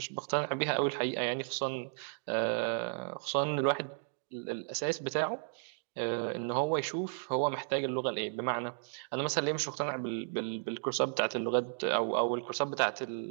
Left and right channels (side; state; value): left; silent; digital silence